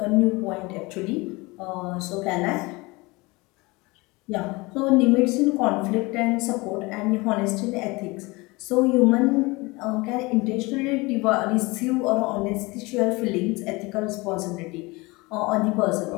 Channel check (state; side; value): quieter; right; 24.1 dB